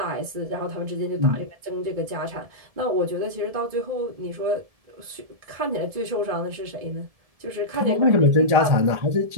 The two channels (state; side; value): late; left; 1.7 ms